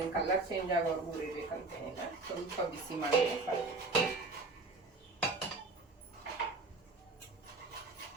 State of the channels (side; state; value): left; quieter; 3.5 dB